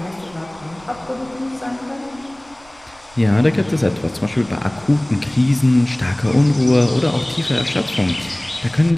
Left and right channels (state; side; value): noise; right; rumble, 27 dB below the sound